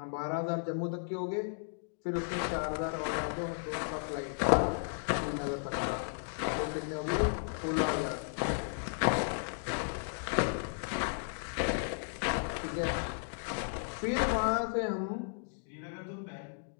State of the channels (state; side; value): silent; right; digital silence